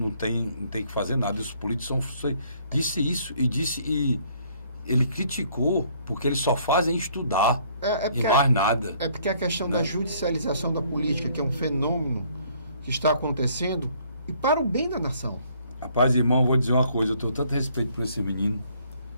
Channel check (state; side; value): inverted; both; correlation -0.63